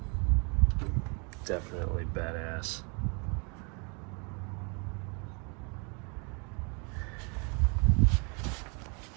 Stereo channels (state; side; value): quieter; left; 34.1 dB